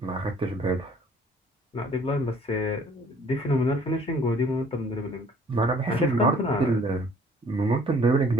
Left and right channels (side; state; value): both; normal; correlation 0.56